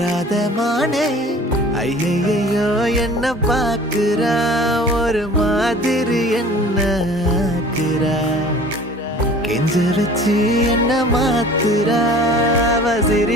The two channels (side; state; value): both; normal; correlation 0.46